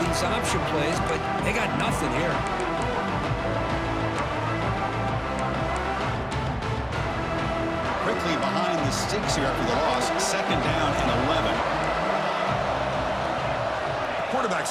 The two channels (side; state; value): both; identical; correlation 1.00